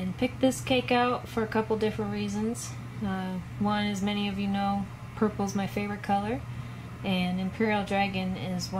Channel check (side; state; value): both; identical; correlation 1.00